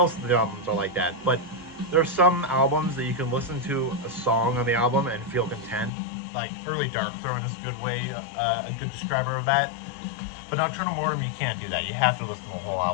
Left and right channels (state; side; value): drops out; right; at 5.9 s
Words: of the albums are like that, but there are some albums that you can listen to a song on the album and feel content. Like Early Darkthrone is a good way, a good describer of that. But Nocturnal Mortem, you can't do that. You have to listen to the whole